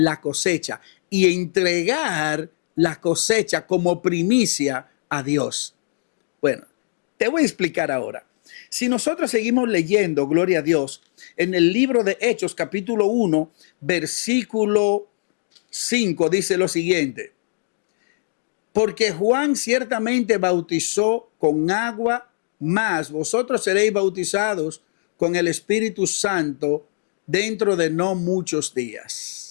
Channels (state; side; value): silent; right; digital silence